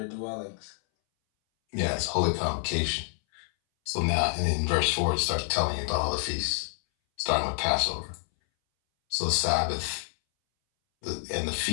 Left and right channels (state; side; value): silent; right; 59 dB below the other